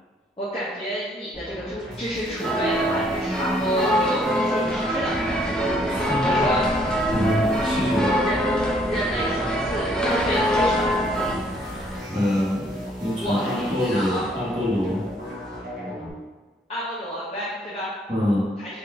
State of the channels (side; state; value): both; normal; correlation 0.65